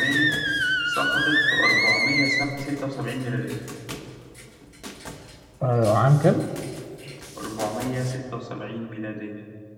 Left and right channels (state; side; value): identical; both; correlation 1.00